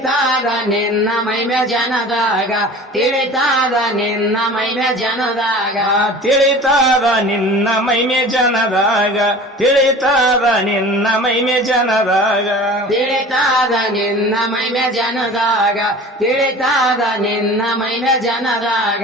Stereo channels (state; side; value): normal; both; correlation 0.40